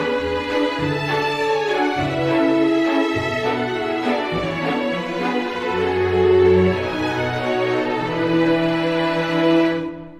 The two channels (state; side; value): identical; both; correlation 1.00